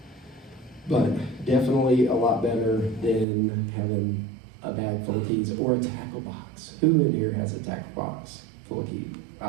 But definitely a lot better than having a bag full of keys or a tackle box. Who in here has a tackle box full of keys?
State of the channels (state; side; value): drops out; left; at 3.2 s